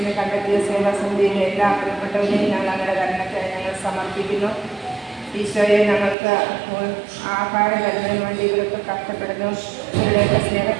കണ്ടെത്തിയ സേവാസമിതിയിലെ എല്ലാ പ്രിയപ്പെട്ടവരെയും ഞങ്ങൾ അങ്ങയുടെ കരുണയ്ക്കായി ഞങ്ങൾ സമർപ്പിക്കുന്നു. ഈശോയെ, ഞങ്ങൾക്ക് ആഹാരം തരുന്നതിന് വേണ്ടി ഇവരൊക്കെ കഷ്ടപ്പെടുന്നു. ഇവരുടെയൊക്കെ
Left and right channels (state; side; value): drops out; left; at 6.2 s